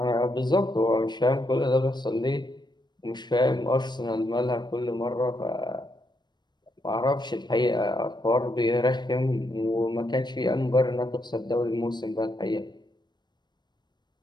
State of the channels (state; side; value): late; right; 0.21 ms